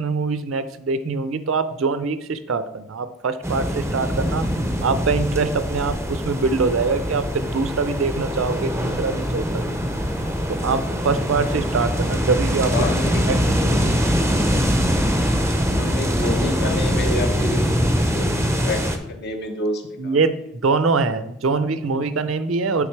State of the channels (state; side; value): normal; both; correlation 0.46